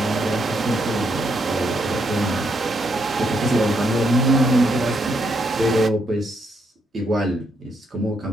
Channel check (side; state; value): both; normal; correlation 0.76